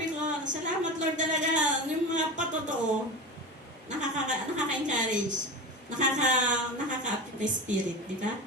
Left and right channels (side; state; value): both; normal; correlation 0.27